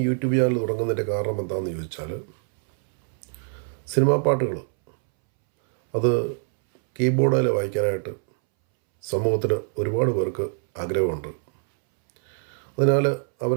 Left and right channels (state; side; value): silent; left; 63 dB below the other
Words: യൂട്യൂബ് ചാനൽ തുടങ്ങുന്നതിൻ്റെ കാരണം എന്താണെന്ന് ചോദിച്ചാൽ, സിനിമാ പാട്ടുകൾ അത് കീബോർഡിൽ വായിക്കാനായിട്ട് സമൂഹത്തിൽ ഒരുപാട് പേർക്ക് ആഗ്രഹമുണ്ട്. അതിനാൽ